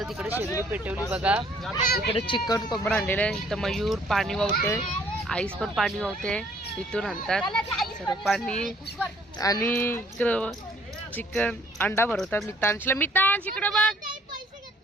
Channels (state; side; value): normal; both; correlation 0.61